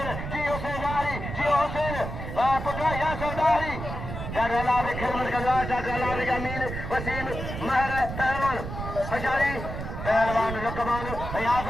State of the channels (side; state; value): right; noise; rumble, 7 dB below the sound